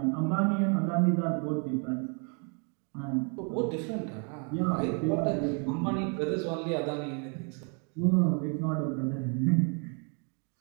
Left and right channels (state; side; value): quieter; left; 37.8 dB